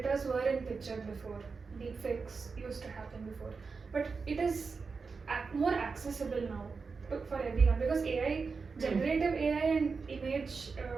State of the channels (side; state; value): left; quieter; 4.8 dB